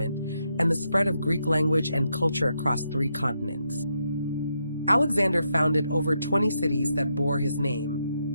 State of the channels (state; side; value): inverted; both; correlation -0.81